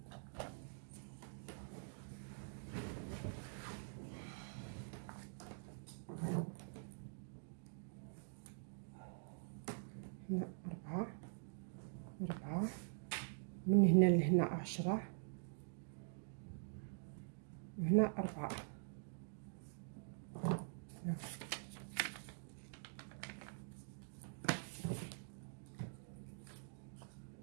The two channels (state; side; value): silent; left; digital silence